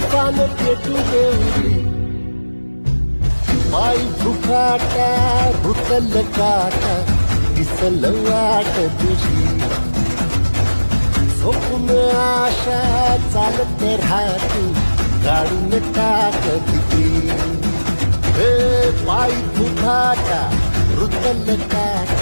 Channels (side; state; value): both; inverted; correlation -1.00